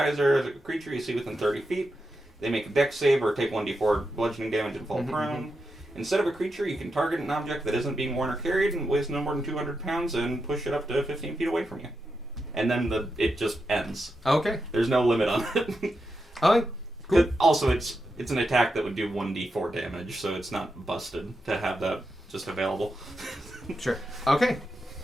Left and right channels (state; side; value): normal; both; correlation 0.87